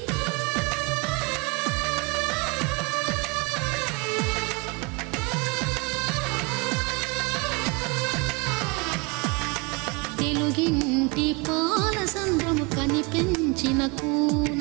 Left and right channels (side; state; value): left; quieter; 29.4 dB